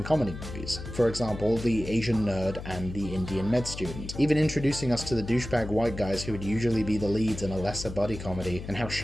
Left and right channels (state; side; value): noise; left; hum, 10 dB below the sound